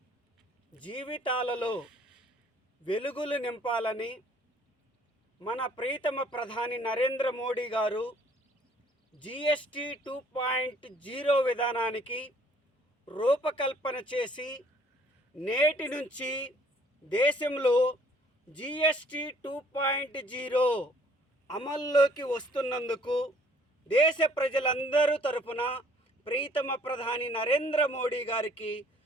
జీవితాలలో వెలుగులు నింపాలని మన ప్రీతమ ప్రధాని నరేంద్ర మోడీ గారు GST 2.0 విధానానికి రూపకల్పన చేసి నేటి నుంచి దేశంలో GST 2.0 అమల్లోకి వస్తున్నందుకు దేశ ప్రజలందరూ తరపున ప్రీతమ ప్రధాని నరేంద్ర మోడీ గారికి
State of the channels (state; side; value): normal; both; correlation 0.59